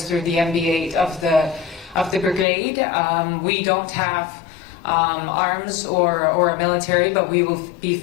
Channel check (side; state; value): right; drops out; at 2.5 s